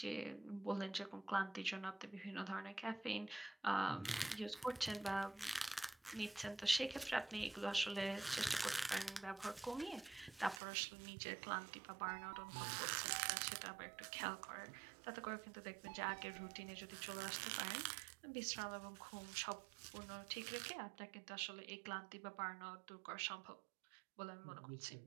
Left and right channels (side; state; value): left; drops out; at 10.6 s